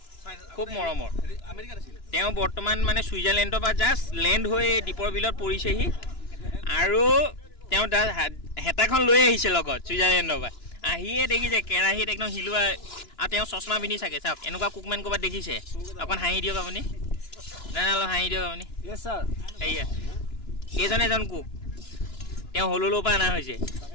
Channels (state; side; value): late; right; 2.9 ms